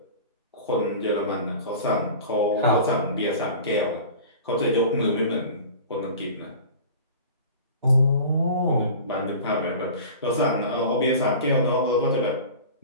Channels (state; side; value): inverted; both; correlation -0.38